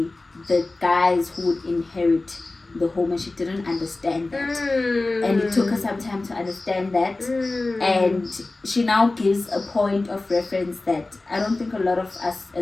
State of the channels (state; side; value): quieter; right; 3.2 dB